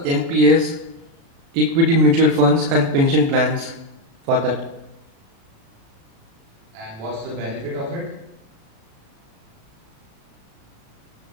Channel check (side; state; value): left; late; 36 ms